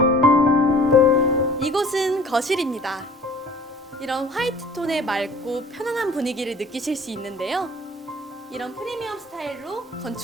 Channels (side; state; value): both; normal; correlation 0.48